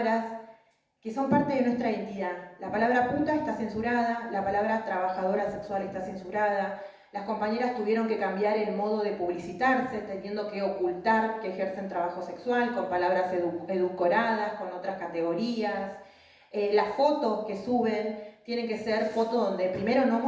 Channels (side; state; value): both; identical; correlation 1.00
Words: que son parte de nuestra identidad. La palabra puta está censurada, la palabra trabajadora sexual está censurada. Las compañeras tuvieron que cambiar el modo de publicitarse, teniendo que ocultar que ejercen trabajo sexual con palabras edulcoradas, con otras categorías. Las fotos que suben tienen que ser fotos donde primero no